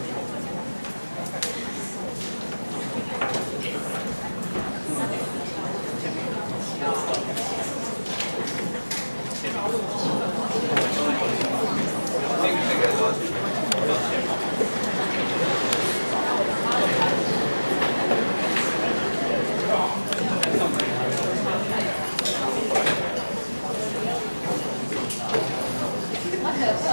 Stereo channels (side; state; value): both; inverted; correlation -1.00